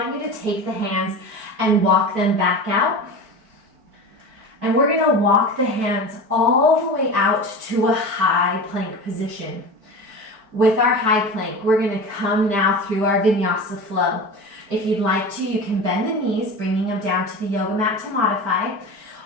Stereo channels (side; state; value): left; late; 4.6 ms